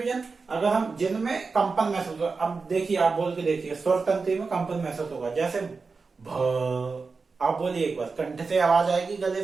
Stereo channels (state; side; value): quieter; left; 4.5 dB